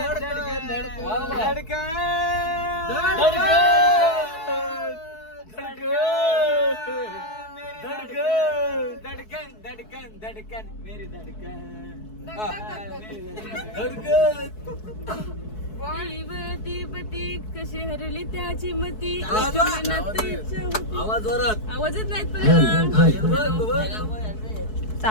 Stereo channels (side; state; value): right; late; 4.6 ms